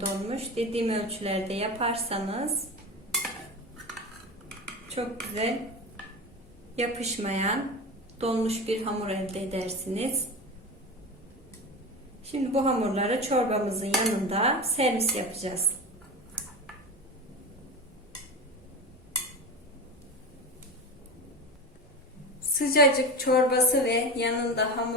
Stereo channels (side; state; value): both; normal; correlation 0.26